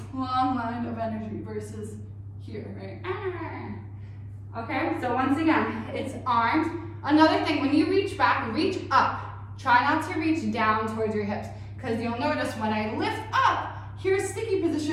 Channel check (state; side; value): identical; both; correlation 1.00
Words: long line of energy versus here, right? Okay, so once again, it's arms. Another thing, when you reach back, reach up. Try not to reach down towards your hips, because you'll notice when I lift up, here's sticky